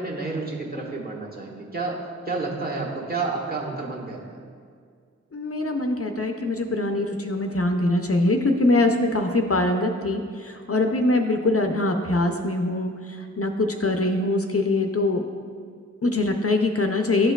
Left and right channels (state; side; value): normal; both; correlation 0.49